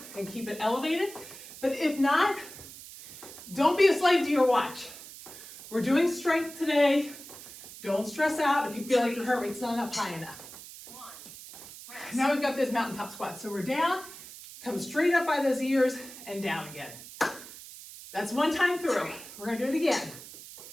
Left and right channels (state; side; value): noise; right; hiss, 15 dB below the sound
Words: and keep it elevated. But if not, don't be a slave to your watch. We're doing strength today. Don't stress out if you feel like your heart rate's not up high enough. 1. Rest. Now we've got this mountaintop squat. So we're down, come straight up by those ears and down again. That's 1 time through. We're gonna do it again.